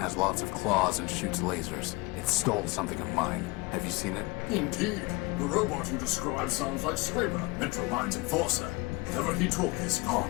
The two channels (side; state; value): right; quieter; 24.6 dB